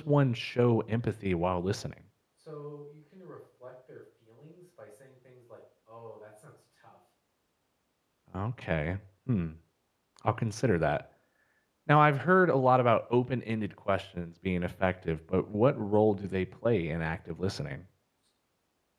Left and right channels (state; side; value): identical; both; correlation 1.00